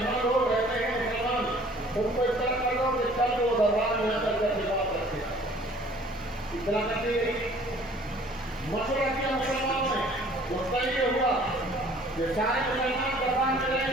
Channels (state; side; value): normal; both; correlation 0.54